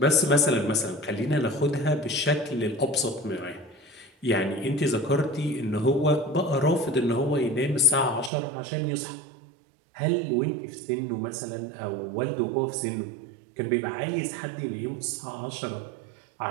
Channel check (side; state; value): left; drops out; at 8.3 s